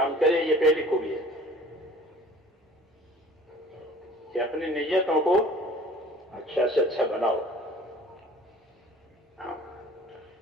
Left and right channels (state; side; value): normal; both; correlation 0.48